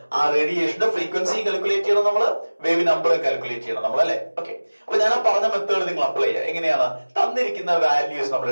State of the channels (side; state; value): both; inverted; correlation -1.00